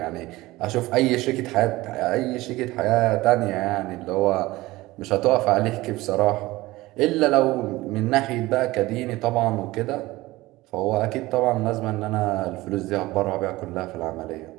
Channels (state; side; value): quieter; left; 19.0 dB